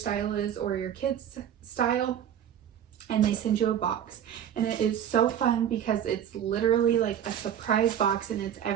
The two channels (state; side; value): quieter; left; 9.7 dB